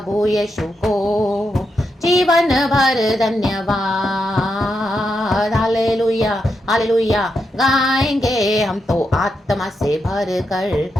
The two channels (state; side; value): normal; both; correlation 0.84